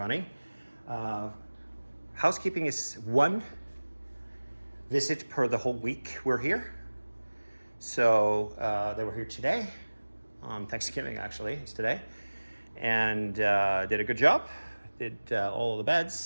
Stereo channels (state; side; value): inverted; both; correlation -1.00